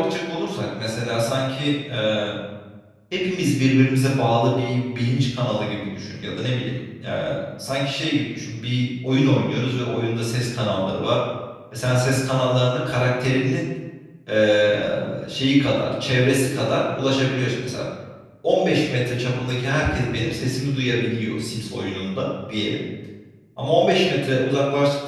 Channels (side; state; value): both; identical; correlation 1.00